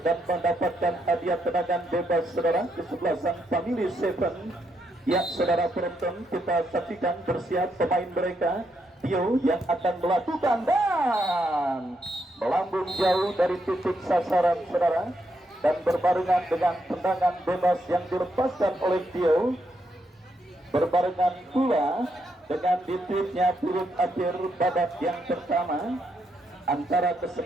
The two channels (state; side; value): normal; both; correlation 0.79